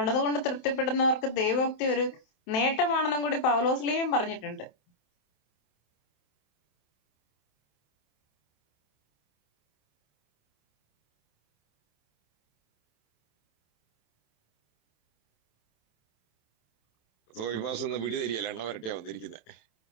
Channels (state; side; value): late; right; 27 ms